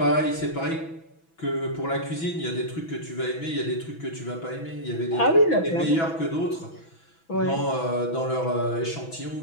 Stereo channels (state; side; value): late; right; 6.1 ms